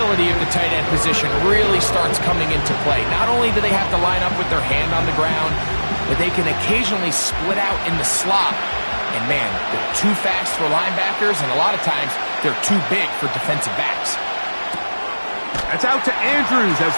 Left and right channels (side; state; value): both; inverted; correlation -1.00